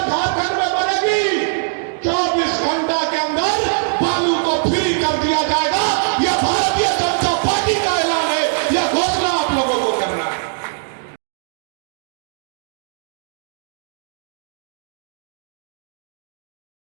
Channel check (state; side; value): silent; left; digital silence